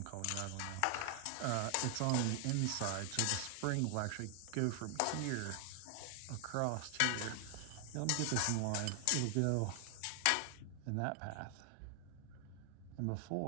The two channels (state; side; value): different; both; correlation 0.00